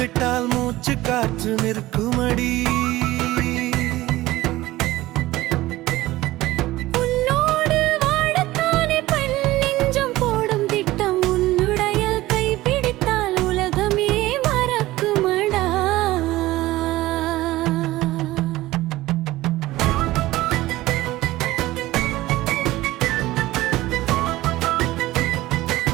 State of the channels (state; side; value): quieter; left; 17.4 dB